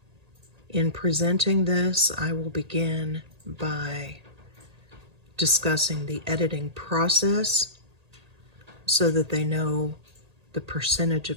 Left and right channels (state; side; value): late; left; 1.8 ms